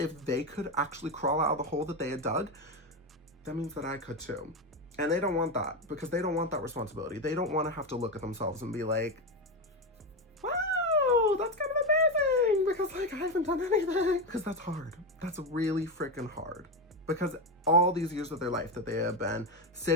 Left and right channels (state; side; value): normal; both; correlation 0.13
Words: they could actually crawl out of the hole that they had dug, that means that I could too. And they don't want that, because they don't want that responsibility. They don't want to have to look at themselves and be like, wow, that's kind of embarrassing because like I haven't done anything. Because that's hard. That's really freaking hard. Because all these years of their life that they have been